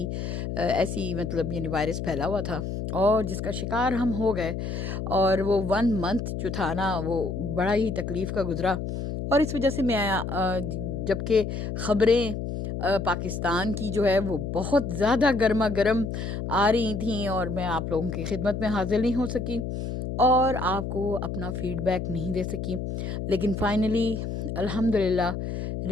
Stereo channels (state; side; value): noise; left; hum, 4 dB below the sound